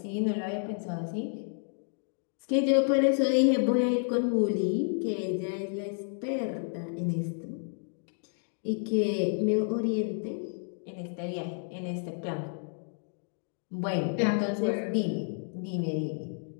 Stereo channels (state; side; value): silent; right; 57 dB below the other